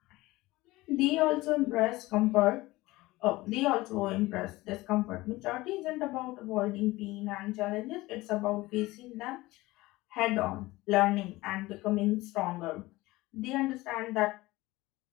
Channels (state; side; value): quieter; right; 19.6 dB